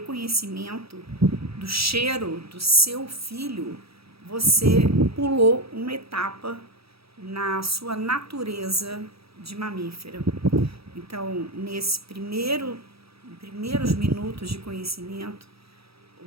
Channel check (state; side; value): late; left; 0.77 ms